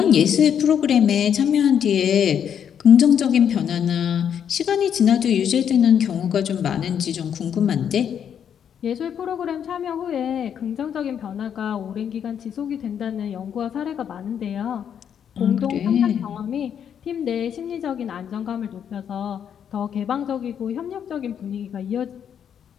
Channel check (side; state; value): right; quieter; 8.5 dB